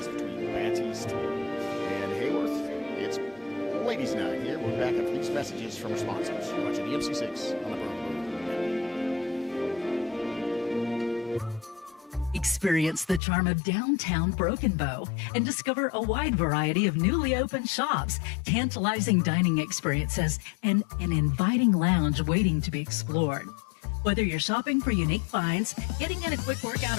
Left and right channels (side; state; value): right; drops out; at 13.2 s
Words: between Battiest and Haworth. It's ladies' night here. We're back after these messages from our sponsors. You're watching the MC6 on the Broken Bow. Experience the charm of downtown Broken Bow and discover a wide variety of newly opened shops, tantalizing dining experiences, and an inviting lounge waiting to be explored. Whether you're shopping for unique finds, getting in a quick workout